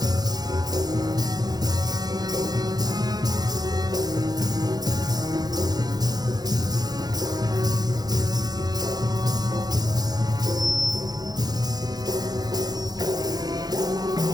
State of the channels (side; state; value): left; late; 0.19 ms